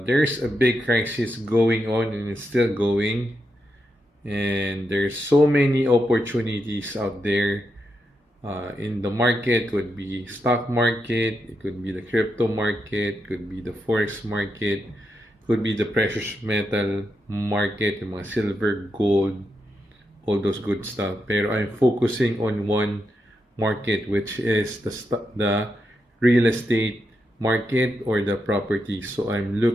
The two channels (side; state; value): both; normal; correlation 0.84